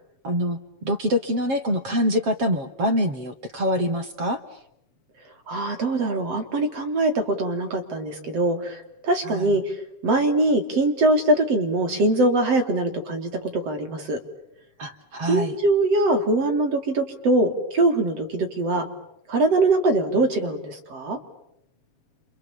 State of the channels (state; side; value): late; left; 7.8 ms